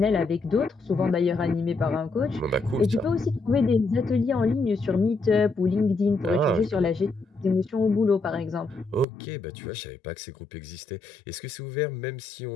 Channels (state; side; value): drops out; right; at 9.1 s